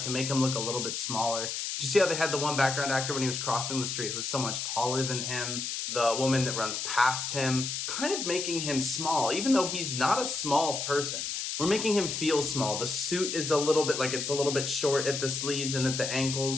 to make him look a little bit smaller. Did you see how they had the one background actor when he was crossing the street who was so much taller than him? The woman that runs past him, kind of making him small, even though he's not a small person. We're making him feel small. The suit is a little bit like it's a little bit short at the sleeves and at the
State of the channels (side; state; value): left; noise; hiss, 3 dB below the sound